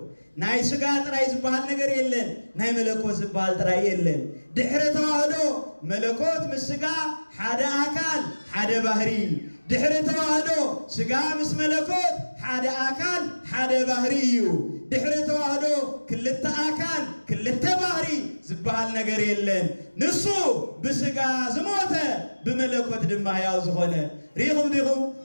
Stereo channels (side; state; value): both; inverted; correlation -1.00